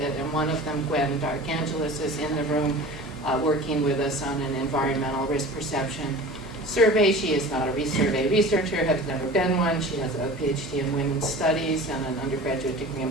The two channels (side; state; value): both; normal; correlation 0.38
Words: And one of them, Gwen Darkangelis, is in the room working with us on an environmental risk perception survey. She is not a survey researcher, has never been one. She has a PhD in women's studies and an undergraduate degree in